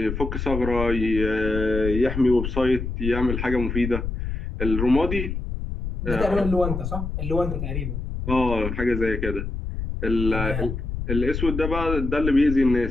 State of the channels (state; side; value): noise; left; rumble, 4 dB below the sound